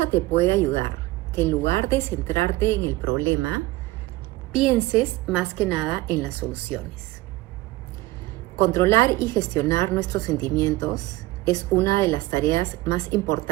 te puede ayudar? Que en lugar de centrarte en el problema, pienses más que nada en las soluciones. Controlar y gestionar nuestros sentimientos es una de las tareas más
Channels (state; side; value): quieter; left; 19.2 dB